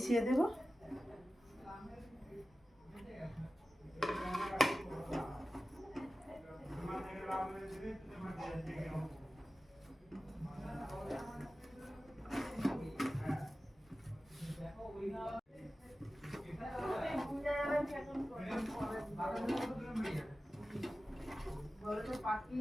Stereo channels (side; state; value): both; normal; correlation 0.95